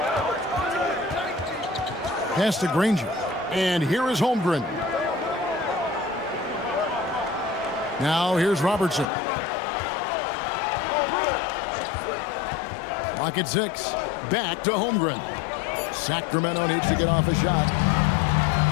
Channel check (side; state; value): right; drops out; at 9.1 s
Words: Pass to Granger. And here is Holmgren. Now here's Robertson. Clock at 6. Back to Holmgren. Sacramento needs to get off a shot.